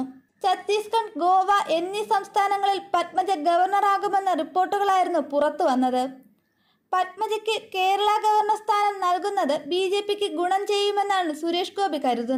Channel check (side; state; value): both; identical; correlation 1.00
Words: ഛത്തീസ്ഗഡ്, ഗോവ എന്നീ സംസ്ഥാനങ്ങളിൽ പത്മജ ഗവർണറാകുമെന്ന റിപ്പോർട്ടുകളായിരുന്നു പുറത്തു വന്നത്. പത്മജയ്ക്ക് കേരള ഗവർണർ സ്ഥാനം നൽകുന്നത് BJPക്ക് ഗുണം ചെയ്യുമെന്നാണ് സുരേഷ് ഗോപി